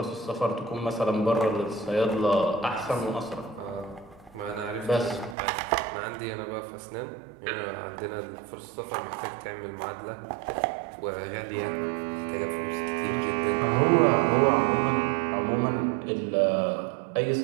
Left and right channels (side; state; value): left; drops out; at 5.4 s